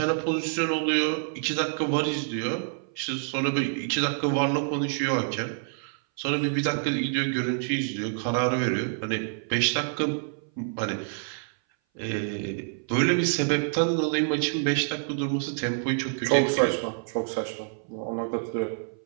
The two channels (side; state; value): left; silent; 58 dB below the other